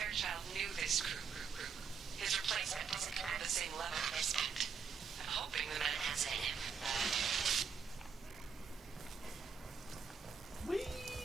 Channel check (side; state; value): left; quieter; 6.1 dB